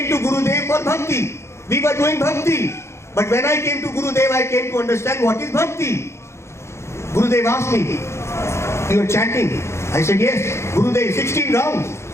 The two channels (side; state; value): right; late; 0.13 ms